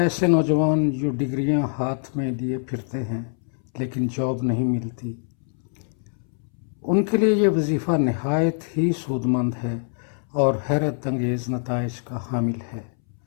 نوجوان جو ڈگریاں ہاتھ میں لیے پھرتے ہیں لیکن جاب نہیں ملتی، ان کے لیے یہ وظیفہ نہایت ہی سود مند ہے اور حیرت انگیز نتائج کا حامل ہے۔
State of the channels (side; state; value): right; silent; 62 dB below the other